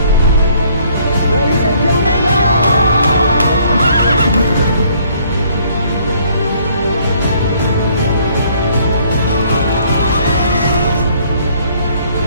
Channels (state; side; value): inverted; both; correlation -0.62